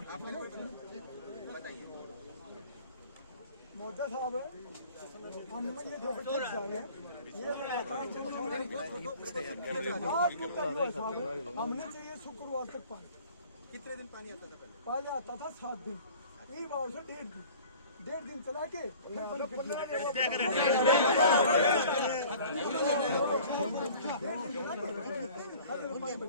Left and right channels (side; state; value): both; inverted; correlation -0.47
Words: मोदी साहब है, हम ये जो हमने चाहिए शुक्रवार तक पानी। कितने दिन पानी आता था पहले आता था 7 दिन, एक बार से 1.5 दिन चला के